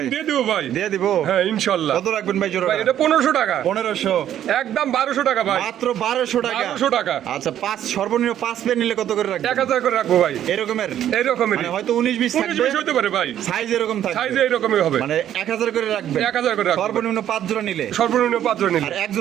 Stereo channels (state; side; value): quieter; left; 11.0 dB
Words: দিয়ে দেবো ভাই। দিয়ে দিব হ্যাঁ ইনশাআল্লাহ। কত রাখবেন ভাই জোড়া ভাই এটা 1500 টাকা। 1500 একদম 1200 টাকা ভাই। মাত্র 1200 টাকা 1200 টাকা। আচ্ছা পাঁচ সর্বনিম্ন 5 পেয়ার নিলে কত করে রাখবেন 1000 করে রাখবো ভাই। এরকমের এইরকমের মানে হয়তো 19 20 19 থাকবে 20 হতে পারে ভাই। সাইজ এরকম থাকবে সাইজ এইরকমই হবে। মানে 1000 করে রাখবেন 1000 করে রাখবো। সর্বনিম্ন 5 জোড়া নিলে সর্বনিম্ন 5 জন নিলে আর এক